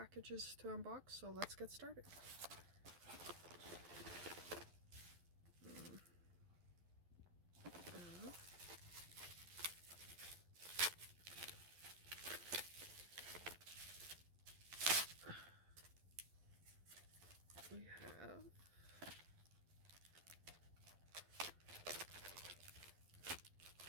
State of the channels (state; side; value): late; left; 12 ms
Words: to unbox, so let's get started. We have